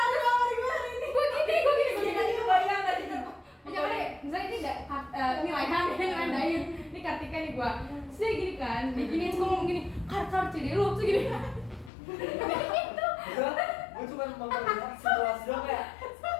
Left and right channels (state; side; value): drops out; right; at 11.9 s